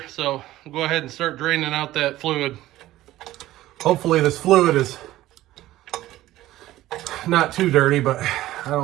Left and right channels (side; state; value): left; quieter; 15.5 dB